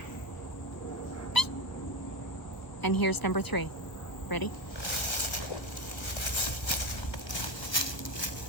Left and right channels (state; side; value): late; right; 1.1 ms